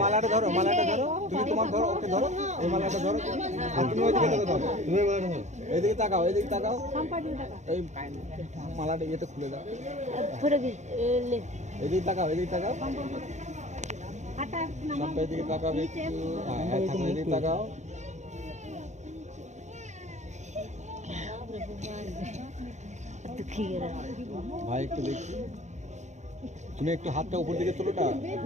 মালাটা ধরো, মালাটা ধরো, তুমি তোমার ধরো, ওকে ধরো, এই মালাটা ধরো। আর তুমি ওইদিকে দেখো, ধরো, তুমি এদিকে তাকাও, এদিকে তাকাও, এই মালাটা ইয়েতে খুলে দাও। এদিকে তাকাও, এদিকে তাকাও, এদিকে তাকাও, এদিকে তাকাও। ভাই একটু দেখি, তুমি একটু হাতটা উপর দিকে তোলোটা,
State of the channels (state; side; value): late; left; 0.34 ms